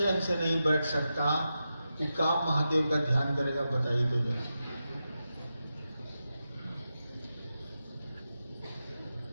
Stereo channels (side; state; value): both; inverted; correlation -0.90